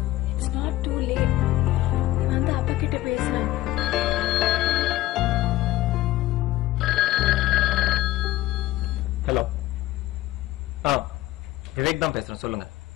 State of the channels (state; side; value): quieter; right; 16.2 dB